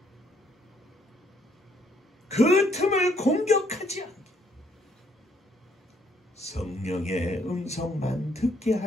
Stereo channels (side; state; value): both; normal; correlation 0.68